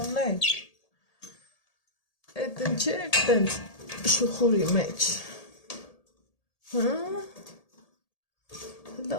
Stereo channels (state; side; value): late; right; 1.8 ms